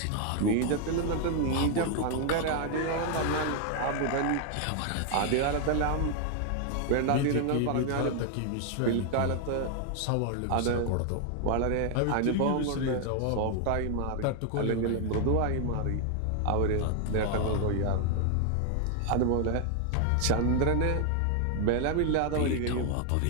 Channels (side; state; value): both; different; correlation 0.00